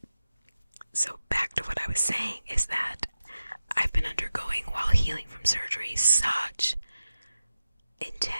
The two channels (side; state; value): both; inverted; correlation -0.92